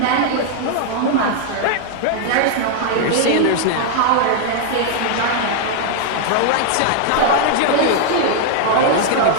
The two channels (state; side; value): different; both; correlation 0.00